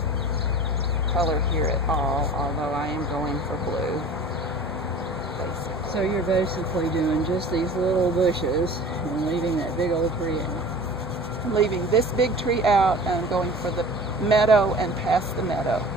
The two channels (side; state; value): both; normal; correlation 0.41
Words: color here at all, although I am going for blue, basically. So you're basically doing just these little bushes and leaving that big old tree out. I'm leaving this big tree out and I'm going for the meadow and past the meadow,